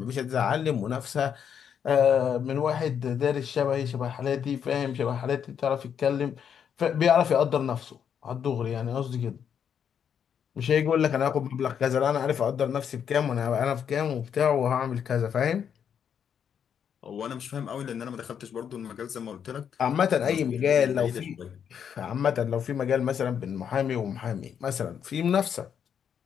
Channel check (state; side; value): quieter; right; 8.0 dB